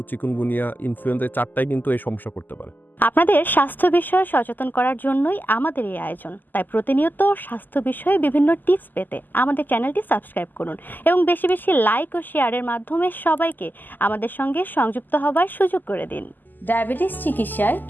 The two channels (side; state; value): right; late; 0.087 ms